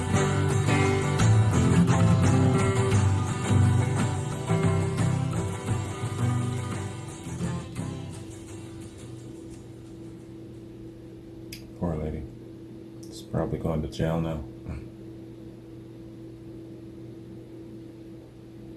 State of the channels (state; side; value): identical; both; correlation 1.00